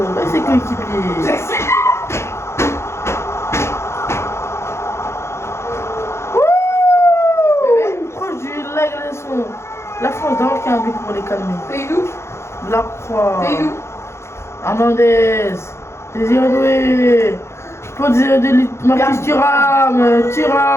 Et ses coéquipiers. Proche du leg, la France d'abord qui a un but pour les calmer. C'est d'où? La Croix. C'est d'où? Hernandez. Désiré Doué. Pour Désiré Doué. Marcus Thuram.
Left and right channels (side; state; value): right; late; 0.13 ms